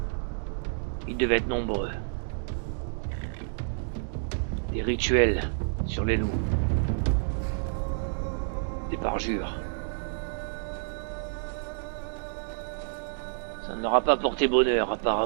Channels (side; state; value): left; silent; digital silence